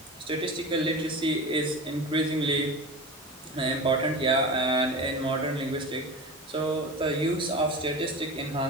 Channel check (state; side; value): normal; both; correlation 0.29